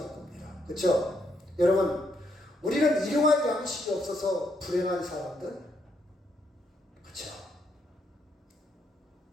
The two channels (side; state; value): both; normal; correlation 0.76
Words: 겁니다. 그렇죠? 여러분 우리는 일용할 양식이 없어서 불행한 사람들 그렇죠?